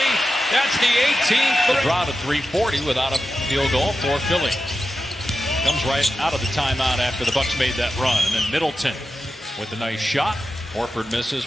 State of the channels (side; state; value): both; normal; correlation 0.91